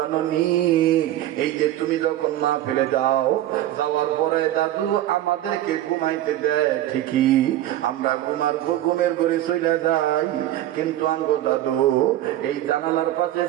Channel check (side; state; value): left; quieter; 13.5 dB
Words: নি এই যে তুমি যখন মা ফেলে যাও, যাওয়ার পরে দাদু আমাদেরকে ঘুমাইতে দেয় ঠিকই, আমরা ঘুমের ঘরে চলে যাই, কিন্তু আঙ্গো দাদু এই জানালার পাশে